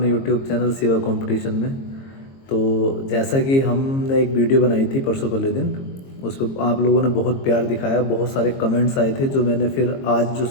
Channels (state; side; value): late; right; 22 ms